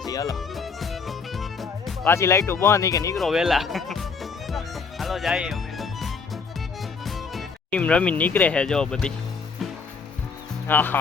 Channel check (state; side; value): quieter; right; 5.1 dB